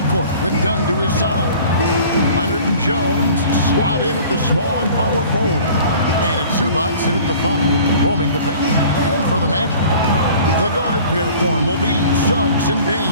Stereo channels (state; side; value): inverted; both; correlation -0.47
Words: with Dunn to his side. Leonard and Jones slot in at the small and power forward. And it's Zubac in at the 5, roaming the paint. And for the Magic, the guard pair form will be Suggs and